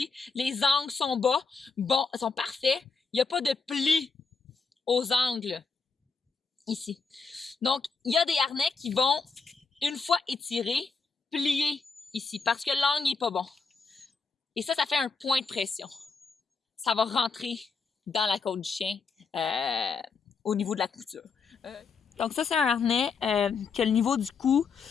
Les angles sont bas, bon, sont parfaits. Il n'y a pas de plis aux angles ici. Donc, il y a des harnais qui vont, une fois étirés, plier ici parce que l'angle n'est pas bon. Et ça fait un point de pression. Ça va rentrer dans la côte du chien au niveau de la couture. Donc ça, c'est un harnais que le niveau du cou,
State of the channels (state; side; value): quieter; right; 4.9 dB